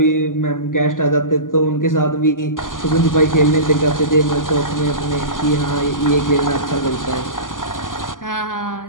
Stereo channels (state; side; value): late; right; 0.89 ms